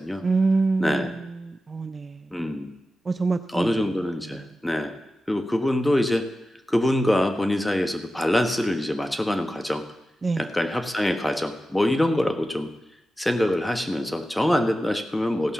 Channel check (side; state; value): both; normal; correlation 0.93